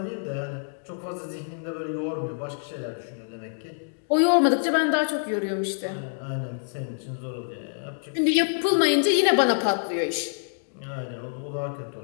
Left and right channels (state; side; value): silent; right; digital silence